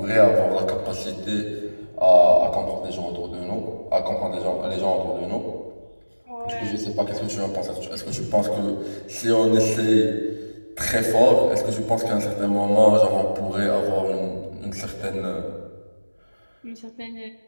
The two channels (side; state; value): both; inverted; correlation -1.00